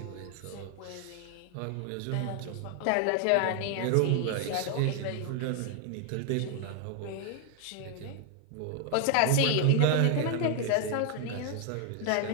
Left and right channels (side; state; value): both; different; correlation 0.00